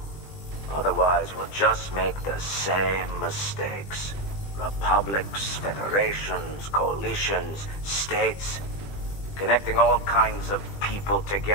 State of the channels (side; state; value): right; late; 20 ms